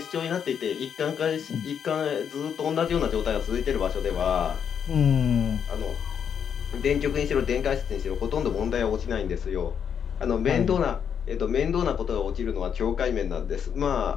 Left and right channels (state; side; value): quieter; right; 7.8 dB